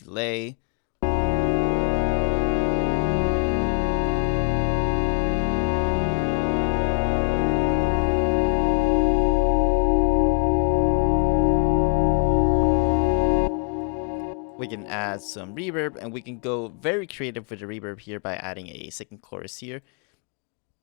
We can add some reverb, and we can go very creative with the reverb here by adding a second chorus here.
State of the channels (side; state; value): right; quieter; 36.7 dB